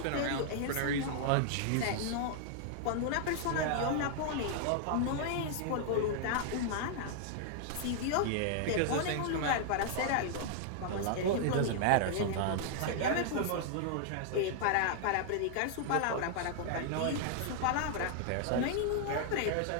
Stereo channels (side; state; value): both; different; correlation -0.01